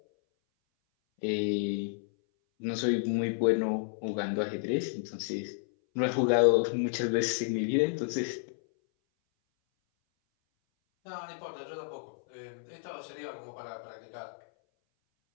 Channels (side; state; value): right; silent; 57 dB below the other